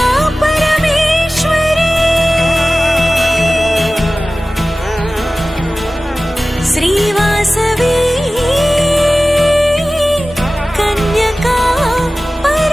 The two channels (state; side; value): normal; both; correlation 0.97